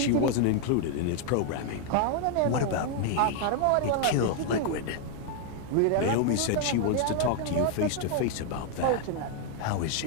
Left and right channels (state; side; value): different; both; correlation 0.00